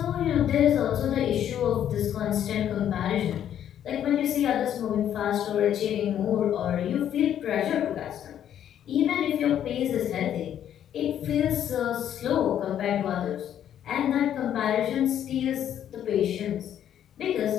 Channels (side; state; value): right; quieter; 10.2 dB